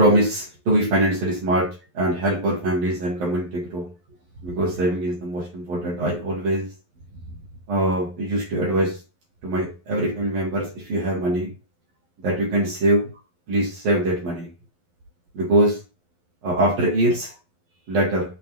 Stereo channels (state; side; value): late; left; 11 ms